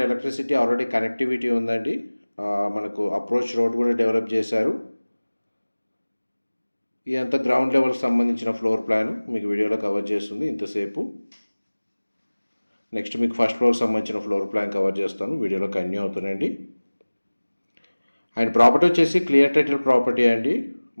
electricity already connectivity ఉందండి. మనకు అప్రోచ్ రోడ్ కూడా డెవలప్ చేశారు. ఇదంతా గ్రౌండ్ లెవెల్కి సంబంధించిన ఫ్లోర్ ప్లాన్ మీకు వీడియోలో కవర్ చేస్తుంది ఇంతసేపు. నెక్స్ట్ మీకు ఫస్ట్ ఫ్లోర్కి సంబంధించిన ఫ్లోర్ ప్లాన్ కవర్ చేస్తాను, వీడియోలో కంటిన్యూ అవుతుందండి. అండ్ ప్రాపర్టీ వచ్చేసి క్లియర్ టైటిల్ ప్రాపర్టీ అండి.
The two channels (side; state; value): both; inverted; correlation -1.00